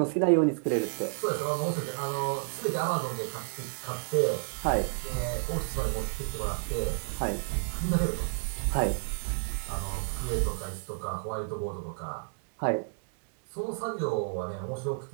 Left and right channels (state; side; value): silent; left; 57 dB below the other